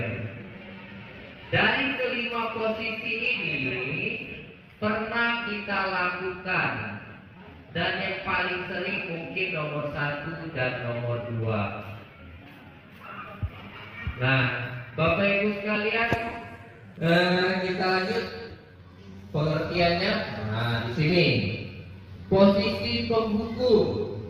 Dari kelima posisi ini pernah kita lakukan, dan yang paling sering mungkin nomor 1 dan nomor 2. Nah, Bapak Ibu sekalian, kita lanjut pengertiannya. Nah, di sini posisi penghukum.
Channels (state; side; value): identical; both; correlation 1.00